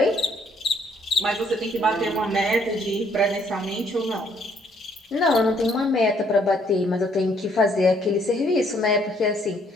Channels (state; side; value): normal; both; correlation 0.66